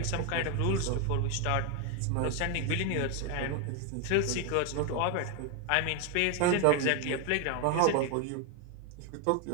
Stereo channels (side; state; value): both; different; correlation 0.01